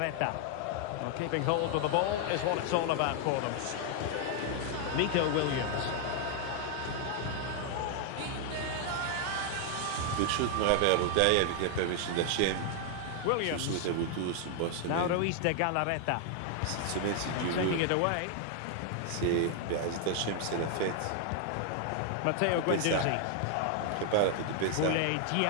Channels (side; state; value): both; different; correlation 0.00